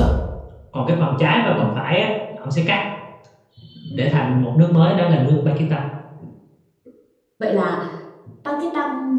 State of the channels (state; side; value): identical; both; correlation 1.00